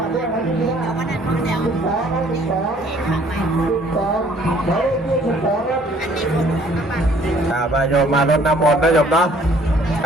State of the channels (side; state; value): both; normal; correlation 0.58